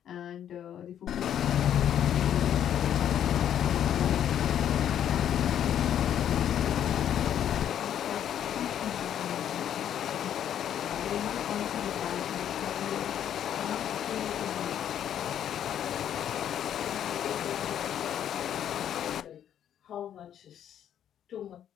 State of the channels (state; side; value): quieter; right; 10.0 dB